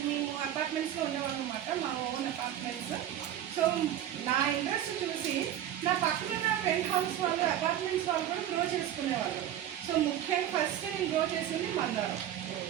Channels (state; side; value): quieter; left; 11.3 dB